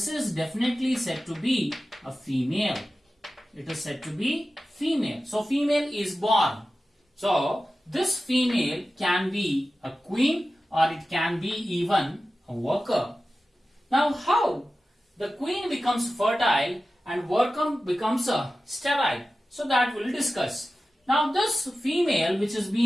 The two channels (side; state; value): both; normal; correlation 0.94